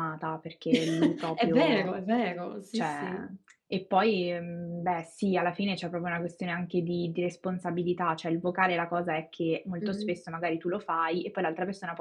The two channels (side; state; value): both; identical; correlation 1.00